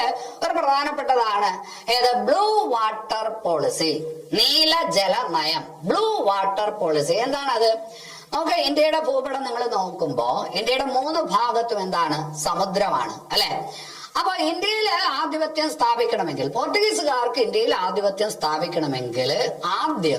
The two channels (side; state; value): both; identical; correlation 1.00